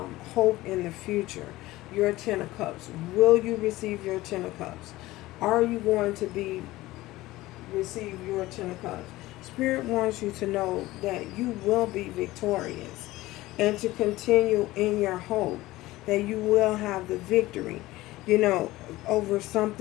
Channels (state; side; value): quieter; right; 18.0 dB